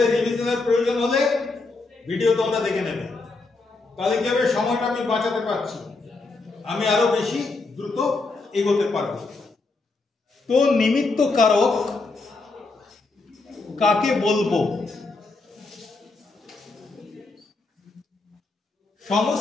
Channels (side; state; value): right; quieter; 3.6 dB